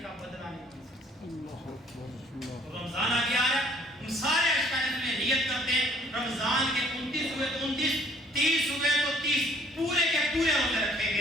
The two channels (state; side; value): normal; both; correlation 0.59